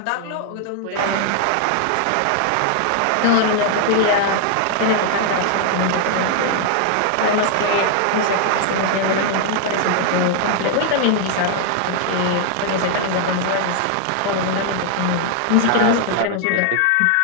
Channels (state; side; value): different; both; correlation 0.00